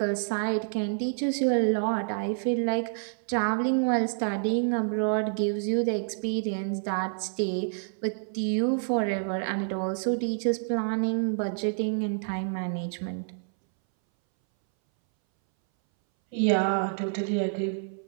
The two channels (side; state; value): left; silent; 59 dB below the other